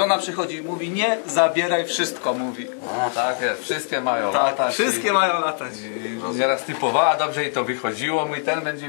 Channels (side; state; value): right; silent; 64 dB below the other